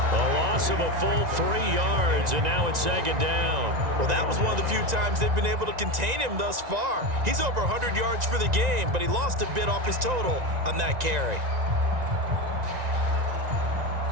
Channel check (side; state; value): left; late; 1.9 ms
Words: A loss of a full 3 yards, and now it's 2nd down. Well, that was one of the few times they've been able to contain him thus far. He's over 100 yards for the game, but he lost a bit off his total on that carry.